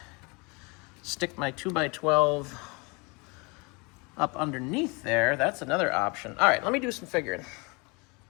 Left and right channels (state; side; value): quieter; right; 29.4 dB